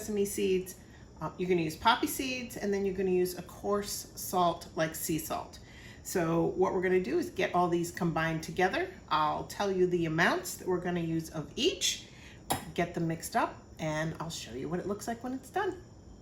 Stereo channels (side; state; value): both; identical; correlation 1.00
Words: seeds. You're going to use poppy seeds, and then you're going to use a coarse salt like sea salt. So what we're going to do is get all these combined together. I'll tell you the amounts that we're going to use of each, get them mixed up, and I'll show you what it looks like when it's done.